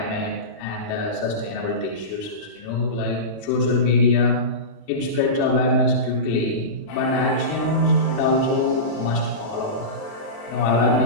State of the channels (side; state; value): right; late; 36 ms